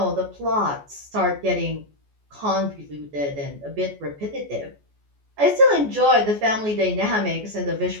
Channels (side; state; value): left; late; 14 ms